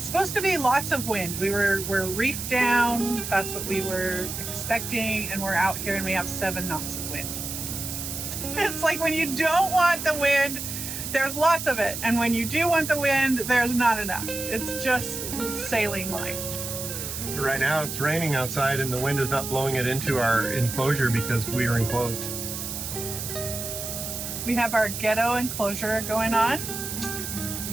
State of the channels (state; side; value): noise; right; hiss, 6 dB below the sound